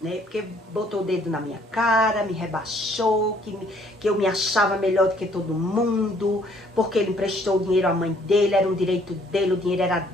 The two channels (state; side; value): normal; both; correlation 0.62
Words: Porque botou o dedo na minha cara, me rebaixou, que eu me achava melhor do que todo mundo, porque ele emprestou o dinheiro à mãe dele, era um direito dele, o dinheiro era